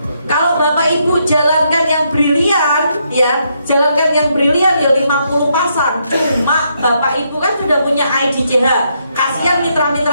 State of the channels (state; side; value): inverted; both; correlation -0.77